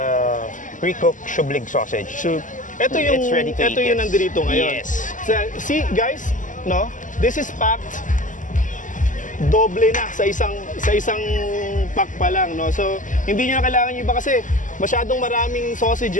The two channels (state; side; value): late; right; 0.37 ms